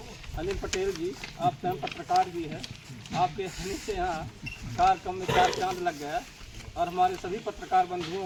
अनिल पटेल जी, आप स्वयं पत्रकार भी हैं, आपके आने से यहाँ कार्यक्रम में 4 चांद लग गया। और हमारे सभी पत्रकार बंधुओं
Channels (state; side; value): identical; both; correlation 1.00